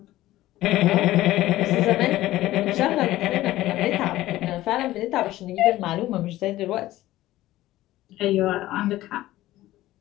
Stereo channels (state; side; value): quieter; right; 15.9 dB